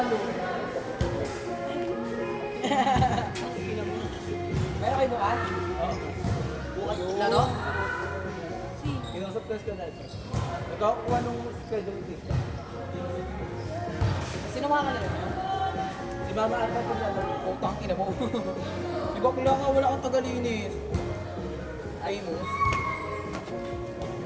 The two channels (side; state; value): both; identical; correlation 1.00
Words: Meron kayo bukas? Oo. Bukas Laro? Kinusap ko na. Nagkakakuha nung schedule test. Sino makakalaro? Si Mama Ata po na lang. Putang ina mo. Di ba kula nga wala kang tagalinis? Amos.